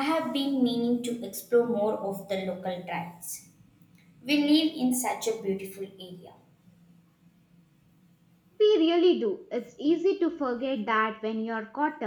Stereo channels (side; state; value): both; identical; correlation 1.00